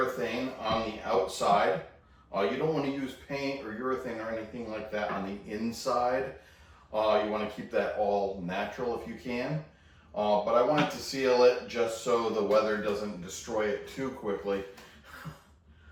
on the outside. You don't want to use paint or urethane or anything like that on the inside. You want to keep that all natural if you can. But I wanted to seal it just so the weather doesn't destroy it too quickly.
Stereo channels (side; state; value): both; identical; correlation 1.00